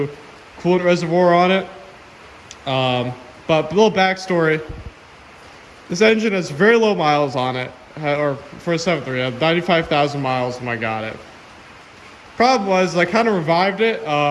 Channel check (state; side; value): identical; both; correlation 1.00